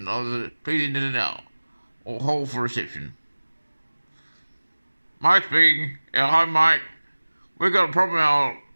of the, please enter it now, or hold for reception. Mike speaking. Yeah, hi Mike. We've got a problem. Our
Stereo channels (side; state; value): both; inverted; correlation -1.00